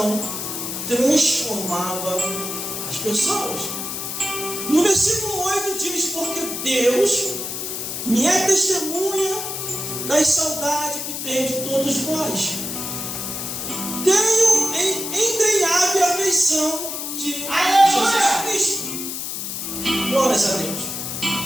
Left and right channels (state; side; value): noise; left; hiss, 5 dB below the sound